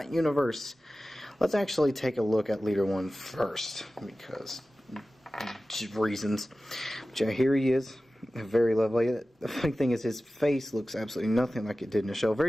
universe. Let's actually take a look at Leader-1 first, because reasons. But yeah, here he is, very lovely. The funny thing is his face looks absolutely nothing like it did in the show.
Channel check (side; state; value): both; normal; correlation 0.96